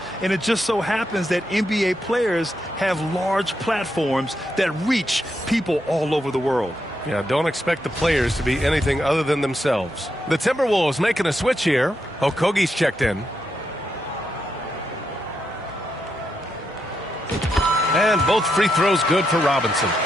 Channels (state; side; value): normal; both; correlation 0.82